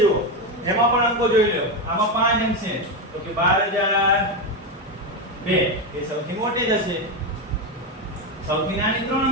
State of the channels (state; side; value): normal; both; correlation 0.11